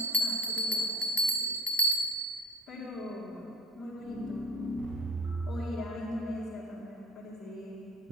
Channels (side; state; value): both; normal; correlation 0.42